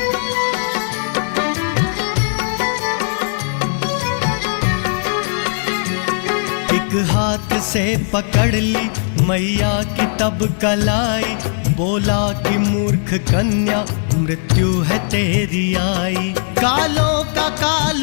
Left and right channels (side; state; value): right; silent; digital silence